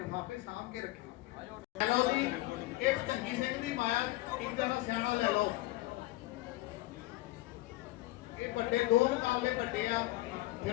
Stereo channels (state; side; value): quieter; right; 18.5 dB